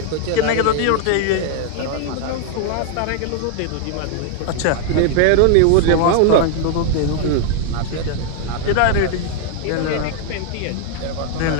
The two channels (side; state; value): both; different; correlation 0.00